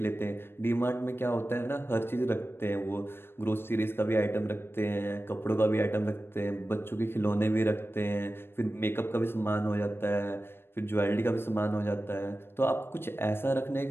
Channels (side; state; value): right; late; 0.11 ms